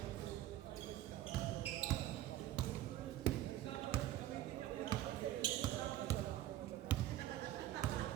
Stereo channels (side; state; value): left; quieter; 13.6 dB